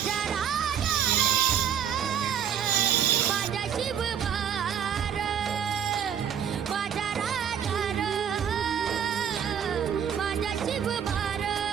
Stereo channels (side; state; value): left; quieter; 8.5 dB